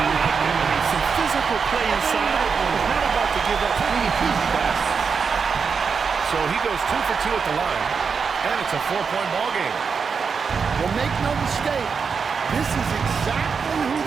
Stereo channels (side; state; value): left; quieter; 5.7 dB